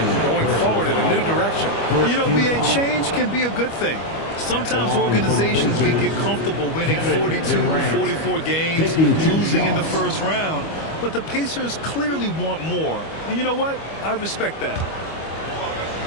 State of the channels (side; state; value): right; late; 25 ms